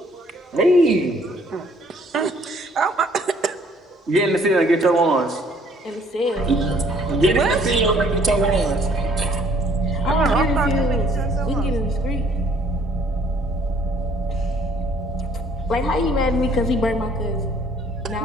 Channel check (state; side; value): normal; both; correlation 0.61